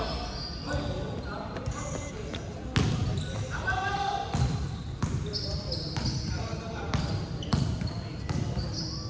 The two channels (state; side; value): identical; both; correlation 1.00